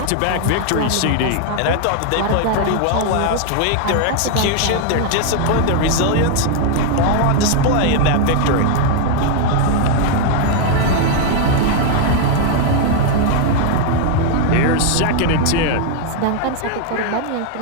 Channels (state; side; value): different; both; correlation 0.00